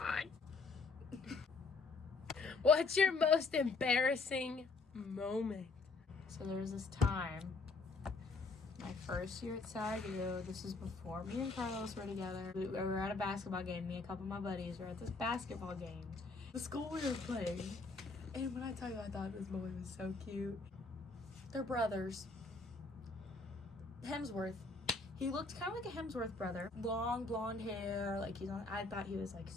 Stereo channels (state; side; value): quieter; right; 3.9 dB